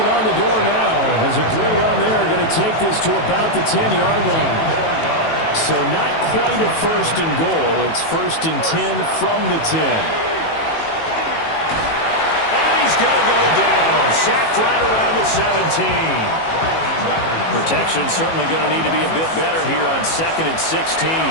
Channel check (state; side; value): late; right; 18 ms